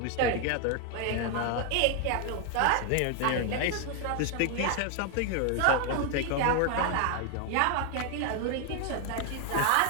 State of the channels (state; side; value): different; both; correlation 0.01